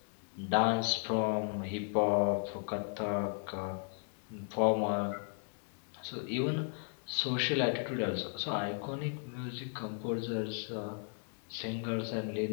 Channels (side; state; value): right; silent; 54 dB below the other